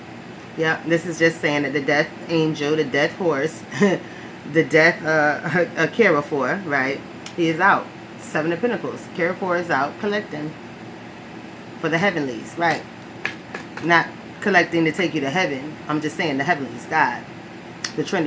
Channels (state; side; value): identical; both; correlation 1.00